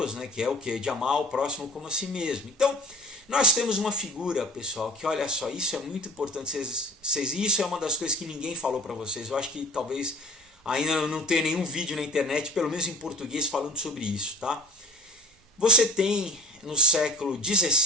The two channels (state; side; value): normal; both; correlation 0.44